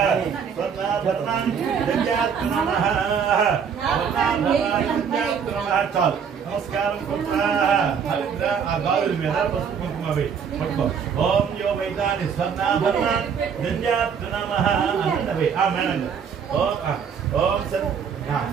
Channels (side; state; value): left; quieter; 6.9 dB